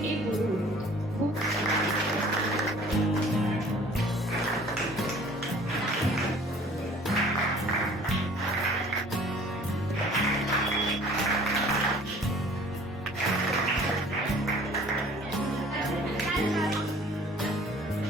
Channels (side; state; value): both; normal; correlation 0.51